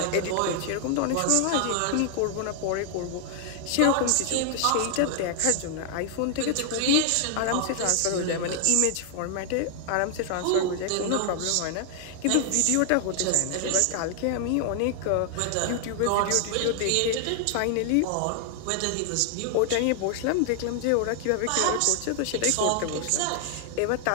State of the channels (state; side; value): different; both; correlation 0.00